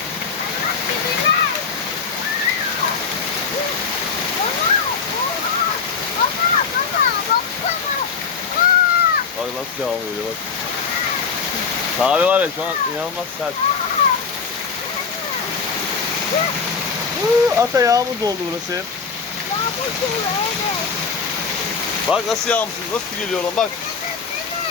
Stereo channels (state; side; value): quieter; right; 5.6 dB